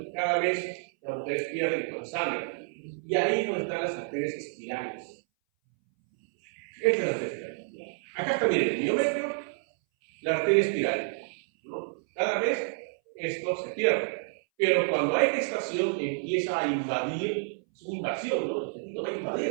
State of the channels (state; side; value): silent; left; 58 dB below the other